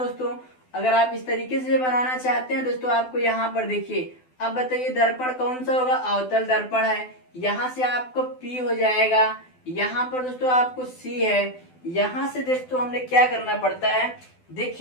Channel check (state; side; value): late; right; 12 ms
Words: अगर आप इस तरीके से बनाना चाहते हैं दोस्तों, आपको यहाँ पर देखिए, अब बताइए दर्पण कौन सा होगा? अवतल दर्पण है। यहाँ से आपको P हो जाएगा, यहाँ पर दोस्तों आपको C है। यहाँ से दोस्तों हमने क्या करना पड़ता है?